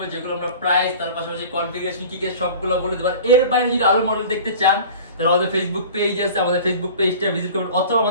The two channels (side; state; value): both; inverted; correlation -0.40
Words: যেগুলো আমরা প্রাইস, তার পাশাপাশি কনফিগারেশন কি কি সবগুলো বলে দেব। এর বাইরে যদি আরো মডেল দেখতে চান তাহলে আমাদের ফেসবুক পেজ আছে, আমাদের ফেসবুক পেজটা ভিজিট করবেন অথবা